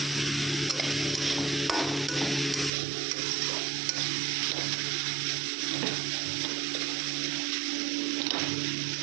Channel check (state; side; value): drops out; left; at 2.7 s